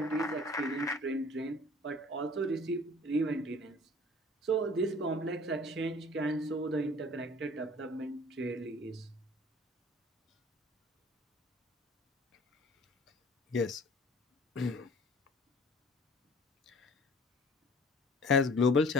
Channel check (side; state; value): both; normal; correlation 0.49